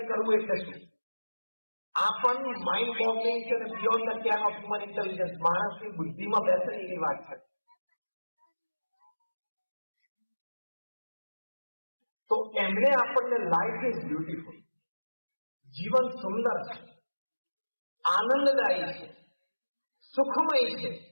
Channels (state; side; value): inverted; both; correlation -1.00